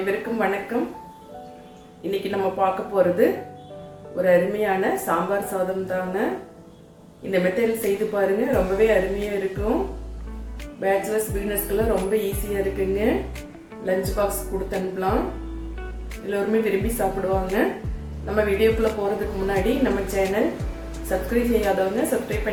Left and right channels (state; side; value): identical; both; correlation 1.00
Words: வணக்கம். இன்னைக்கு நம்ம பார்க்க போகிறது ஒரு அருமையான சாம்பார் சாதம் தாங்க. இந்த மெத்தடில் செய்து பாருங்க, ரொம்பவே அருமையாக இருக்கும். பேச்சுலர்ஸ் பிகினர்ஸ்க்கெல்லாம் ரொம்ப ஈஸியாக இருக்குங்க. லஞ்ச் பாக்ஸ் கொடுத்து அனுப்பலாம், எல்லோருமே விரும்பி சாப்பிடுவாங்க. நம்ம வீடியோக்குள்ளே போகிறதுக்கு முன்னாடி நம்ம சேனல் சப்ஸ்கிரைப் செய்யாதவங்க சப்ஸ்கிரைப்